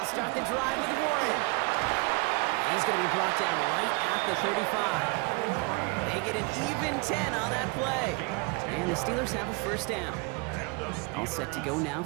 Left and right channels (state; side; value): quieter; left; 29.8 dB